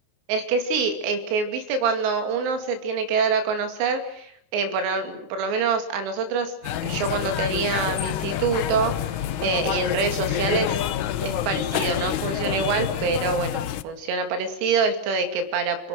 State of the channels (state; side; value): late; left; 19 ms